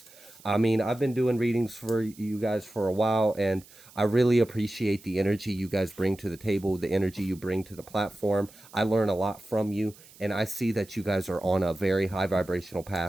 I mean, I've been doing readings for you guys for a while, and I really appreciate the energy you guys bring to the table, the energy you bring to the platform. I learn a lot from you, and I see that you guys are on a very high vibrational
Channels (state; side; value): noise; right; hiss, 23 dB below the sound